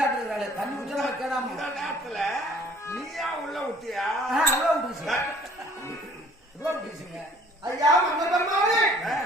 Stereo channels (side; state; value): both; normal; correlation 0.55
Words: தண்ணி குடிச்சா கேடாம இந்த நேரத்துல நீயா உள்ள விட்டியா அவ்வளோ விட்டுருச்சுங்க ஐயா மன்னர் பெருமானே